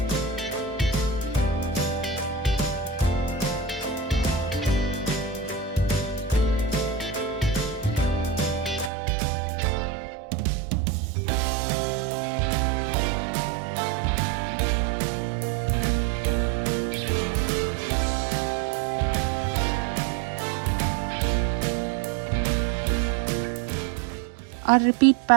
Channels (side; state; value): left; drops out; at 8.9 s